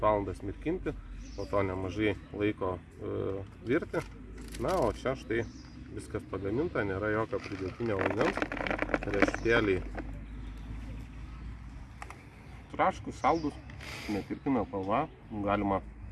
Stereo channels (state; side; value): identical; both; correlation 1.00